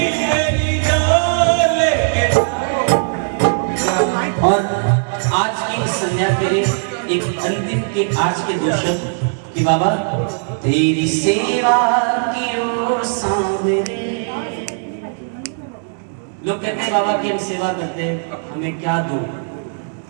मेरी जान लेके। और आज की इस संध्या के लिए एक अंतिम के आज के दो शब्द कि बाबा तेरी सेवा की ओ सांवरे। लोग कहते हैं बाबा की हम सेवा करते हैं, हमें क्या दो,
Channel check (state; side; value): silent; left; 66 dB below the other